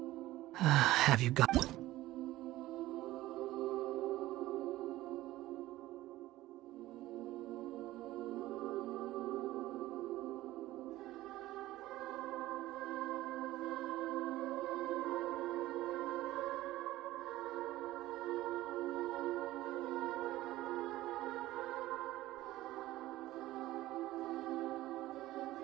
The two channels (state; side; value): quieter; left; 16.4 dB